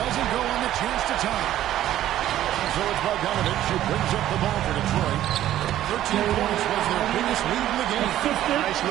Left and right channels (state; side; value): quieter; left; 12.8 dB